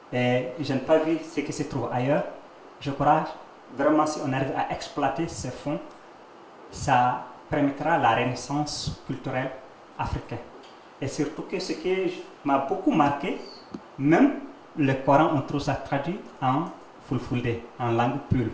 Et je n'ai pas vu ce qui se trouve ailleurs. Je crois vraiment si on arrive à exploiter ces fonds, ça permettra la renaissance culturelle africaine. Et surtout que ce qui m'a beaucoup marqué, même le Coran, on trouve ça traduit en fulfulde, en langue pure.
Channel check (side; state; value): both; identical; correlation 1.00